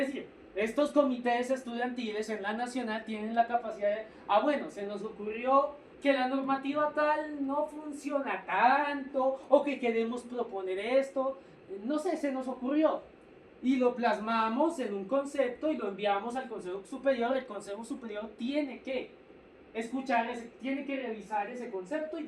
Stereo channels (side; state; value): both; identical; correlation 1.00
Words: estos comités estudiantiles en la nacional tienen la capacidad de, bueno, se nos ocurrió que la normativa tal no funciona tanto, o que queremos proponer esto, no sé, se nos ocurrió. y lo plasmamos en un concepto y lo enviamos al Consejo Superior. El Consejo Superior tiene que escuchar, tiene que revisar ese concepto y